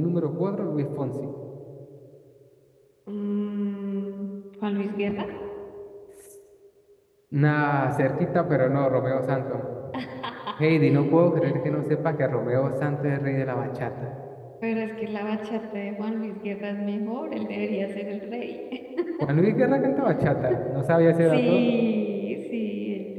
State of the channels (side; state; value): both; identical; correlation 1.00